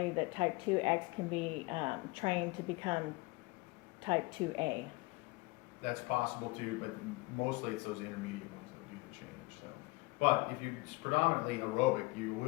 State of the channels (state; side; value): quieter; right; 24.3 dB